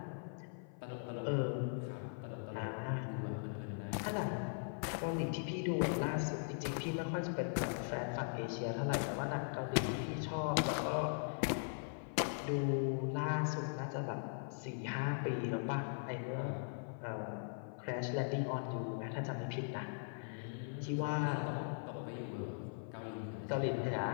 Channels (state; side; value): silent; right; 51 dB below the other